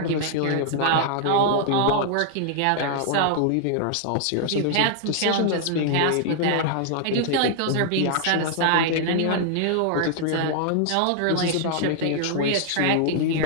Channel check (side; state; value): both; different; correlation 0.00